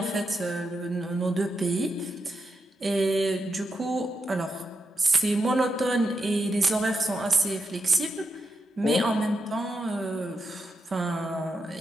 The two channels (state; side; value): normal; both; correlation 0.85